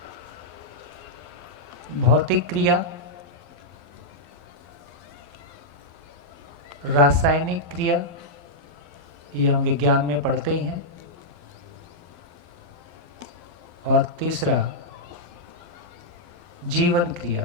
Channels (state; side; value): late; left; 12 ms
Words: भौतिक क्रिया, रासायनिक क्रिया, ये हम विज्ञान में पढ़ते ही हैं, और तीसरा जीवन